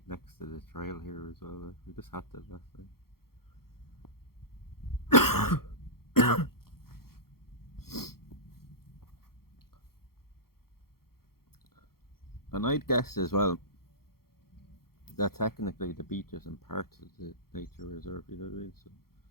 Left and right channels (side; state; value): right; late; 0.94 ms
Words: next to the trail here as well. Like, we just had to last night. And I'd guess as well that technically the beach isn't part of the nature reserve, you know what I mean? So